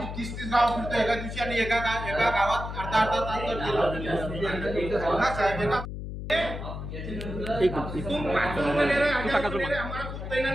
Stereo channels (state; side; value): noise; left; hum, 7 dB below the sound